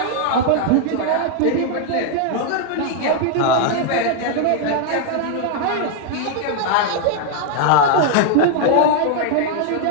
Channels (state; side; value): different; both; correlation 0.00